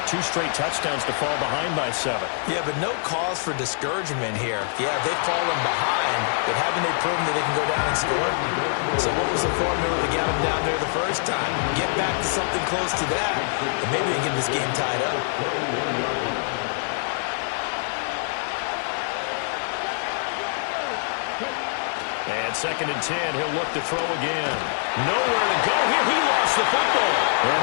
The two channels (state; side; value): silent; right; 56 dB below the other